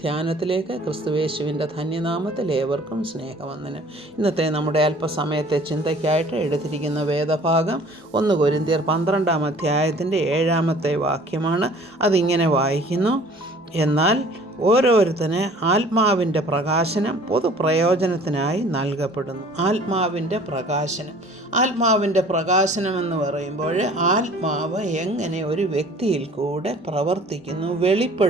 ക്രിസ്തുയേശുവിൻ്റെ ധന്യനാമത്തിൽ ഏവർക്കും സ്നേഹവന്ദനം. ഇന്നത്തെ നമ്മുടെ അല്പസമയത്തെ ചിന്തയ്ക്കായിട്ട് എടുത്തിരിക്കുന്ന വേദഭാഗം 1 കൊരിന്ത്യർ 12-ാം അധ്യായത്തിൻ്റെ 7-ാമത്തെ വാക്യമാണ്. അതിങ്ങനെ വായിക്കുന്നു: എന്നാൽ ഓരോരുത്തന് ആത്മാവിൻ്റെ പ്രകാശനം പൊതുപ്രയോജനത്തിനായി നൽകപ്പെടുന്നു. ആത്മാവിൻ്റെ പ്രകാശനം എന്ന് പറയുമ്പോൾ ആത്മാവ് എങ്ങനെ ഒരു വ്യക്തിയിൽ കൂടെ പ്രവർത്തിക്കുന്നു,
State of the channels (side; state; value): both; normal; correlation 0.50